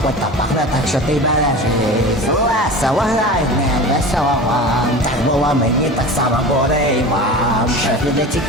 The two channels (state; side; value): normal; both; correlation 0.33